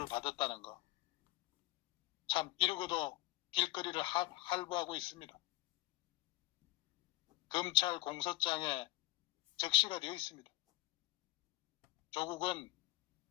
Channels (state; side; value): quieter; right; 20.0 dB